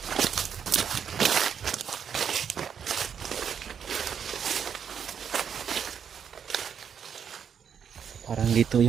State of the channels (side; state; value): left; quieter; 7.6 dB